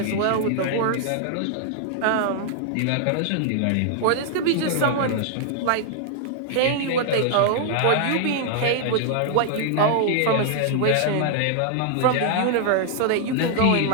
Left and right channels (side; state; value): both; different; correlation -0.01